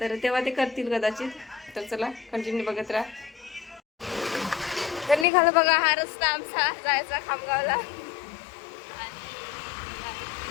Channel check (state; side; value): drops out; right; at 5.2 s